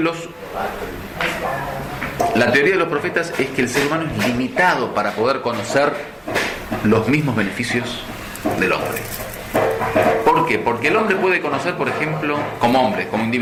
la teoría de los profetas es que el ser humano es limitado para poder conocer los mismos beneficios del hombre. ¿Por qué? Porque el hombre puede conocer, por ejemplo, como hombre, como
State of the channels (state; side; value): identical; both; correlation 1.00